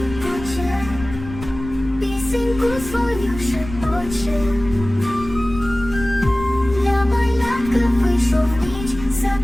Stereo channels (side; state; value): left; noise; rumble, 12 dB below the sound